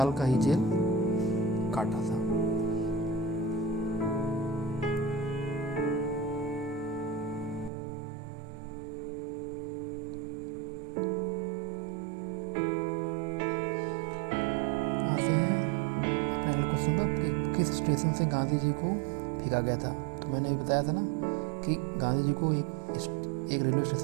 का ही जेल काटा था। आते हैं अपने अगले क्वेश्चन पर कि किस स्टेशन से गांधी जी को फेंका गया था? तो मैंने अभी बताया था ना कि गांधी जी को एक रेलवे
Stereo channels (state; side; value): drops out; left; at 7.7 s